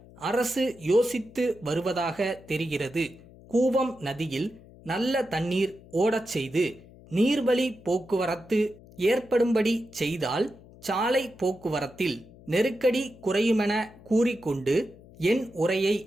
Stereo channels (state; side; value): noise; left; hum, 22 dB below the sound